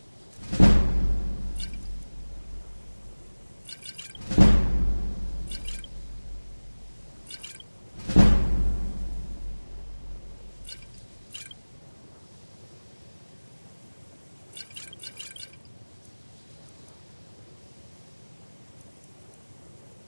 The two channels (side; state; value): both; inverted; correlation -1.00